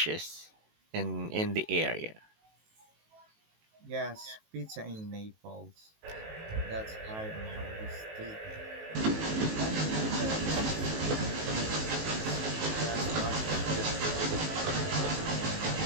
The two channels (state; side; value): late; left; 19 ms